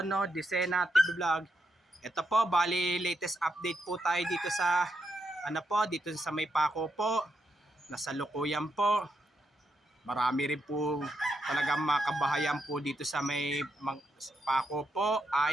Disena TV Vlog. Ito po, bali latest update po tayo dito sa dito sa may Paco po. Nasa Lukuyan po. Marami rin po talagang makabahayan po dito sa may Paco po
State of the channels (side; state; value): both; normal; correlation 0.82